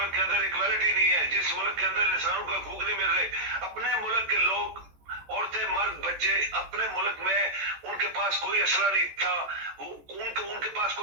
के अंदर इक्वालिटी नहीं है, जिस मुल्क के अंदर इंसानों का हकूक नहीं मिल रहे, अपने मुल्क के लोग, औरतें, मर्द, बच्चे, अपने मुल्क में उनके पास कोई असला नहीं था, उनके पास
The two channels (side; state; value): left; late; 14 ms